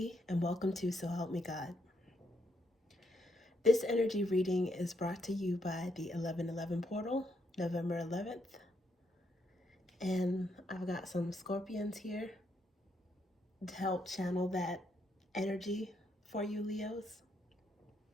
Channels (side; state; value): both; normal; correlation 0.77